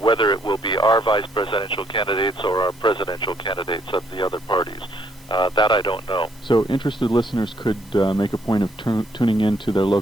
whether it will be our vice presidential candidates or our presidential candidates of the other parties, that I don't know. So interested listeners could make a point of tuning in to their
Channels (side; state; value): right; noise; hiss, 28 dB below the sound